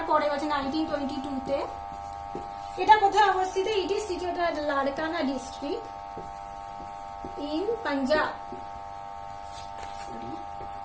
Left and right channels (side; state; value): both; identical; correlation 1.00